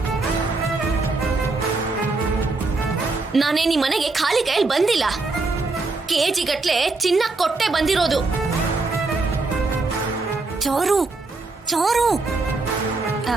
ನಾನೇನ್ ಈ ಮನೆಗೆ ಖಾಲಿ ಕೈಯಲ್ಲಿ ಬಂದಿಲ್ಲ. ಕೆಜಿ ಗಟ್ಲೆ ಚಿನ್ನ ಕೊಟ್ಟೆ ಬಂದಿರೋದು. ಚಾರು, ಚಾರು,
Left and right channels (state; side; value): quieter; left; 3.6 dB